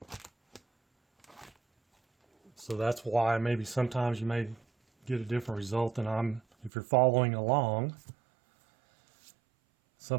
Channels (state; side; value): drops out; left; at 6.7 s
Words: So that's why maybe sometimes you may get a different result than if you're following along.